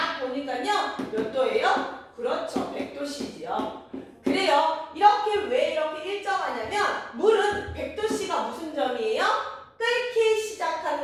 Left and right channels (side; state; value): both; identical; correlation 1.00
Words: 보니까요, 몇 도예요? 그렇죠, 100도씨지요. 그래요. 왜 이렇게 일정하냐면 물은 100도씨가 무슨 점이에요? 끓기